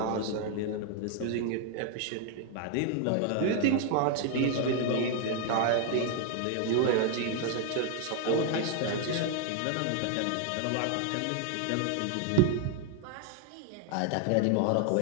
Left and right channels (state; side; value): different; both; correlation 0.00